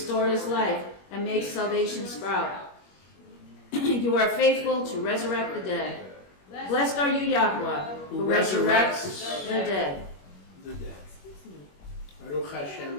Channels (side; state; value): right; late; 21 ms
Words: life and makes salvation sprout? You are faithful to resurrect the dead. Blessed are you, Yahweh, who resurrects the dead. The dead. Baruch